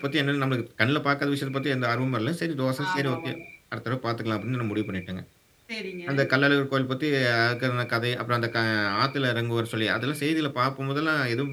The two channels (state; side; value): identical; both; correlation 1.00